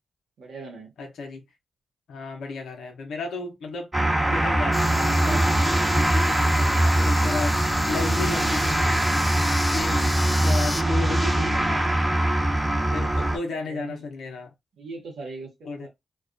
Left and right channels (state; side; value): normal; both; correlation 0.95